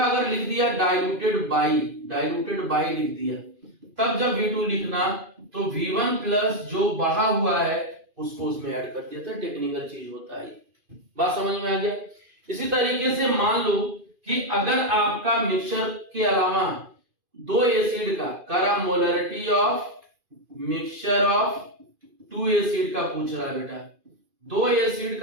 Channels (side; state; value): left; late; 2.5 ms